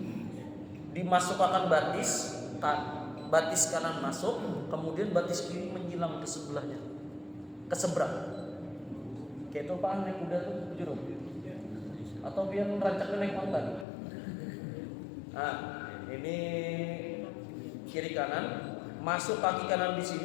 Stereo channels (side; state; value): right; drops out; at 13.9 s